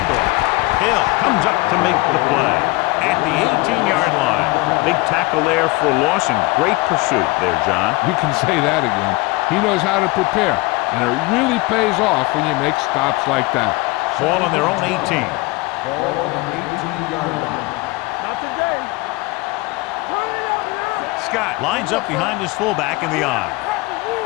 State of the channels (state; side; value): quieter; right; 23.1 dB